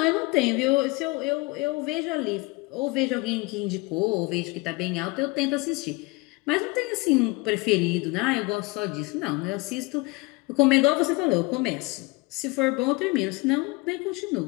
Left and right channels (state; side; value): quieter; right; 24.9 dB